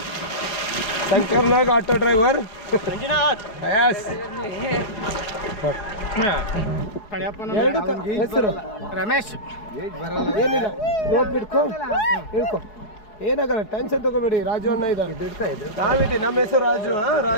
ಶಂಕರ್ ನಾಗ್ ಆಟೋ ಡ್ರೈವರ್ ಮಂಜುನಾಥ್ ಯಸ್ ಎರಡು ಹೆಸರು ರಮೇಶ್ ಏನಿಲ್ಲ ರೋಪ್ ಇಟ್ಕೋ ಇಳ್ಕೊ ಏನಾಗಲ್ಲ ಟೆನ್ಷನ್ ತಗೋಬೇಡಿ ರಾಜು ಅಣ್ಣ ಇದ್ದಾರೆ ನಾವಿದ್ದೀವಿ ನಮ್ಮ ಹೆಸರು ರಾಜು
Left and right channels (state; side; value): late; right; 4.7 ms